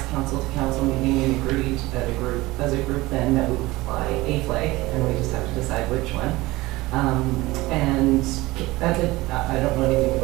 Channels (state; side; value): quieter; left; 19.9 dB